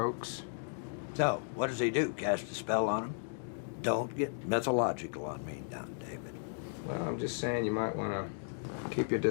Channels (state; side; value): silent; right; digital silence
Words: So, what does he do? Cast a spell on him? Don't get mythological on me now, David. Well, I'm just saying you might want to keep your